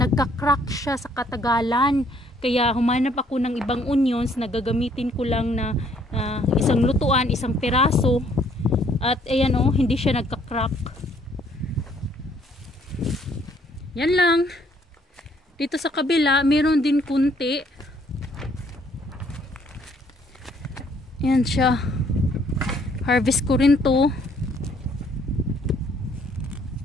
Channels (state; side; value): normal; both; correlation 0.65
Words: siya sa katagalan. Kaya humanap ako ng ibang onions na gagamitin ko lang na isang lutuan, isang piraso. At ayan o, hindi siya nagka-crack. Yan lang. Dito sa kabila, meron din kunti. Yan siya. Harvest ko rin to.